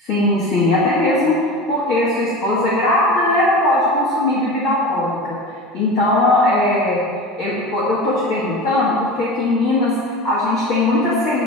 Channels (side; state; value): both; normal; correlation 0.31